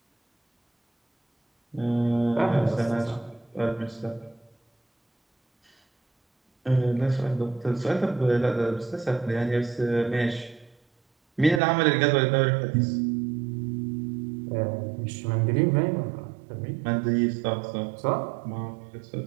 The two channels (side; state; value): left; drops out; at 11.6 s